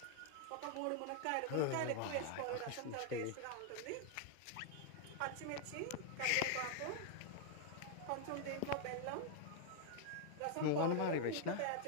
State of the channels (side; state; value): both; different; correlation 0.00